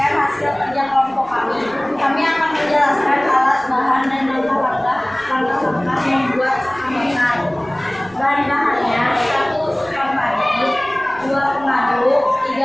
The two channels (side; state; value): right; noise; rumble, 25 dB below the sound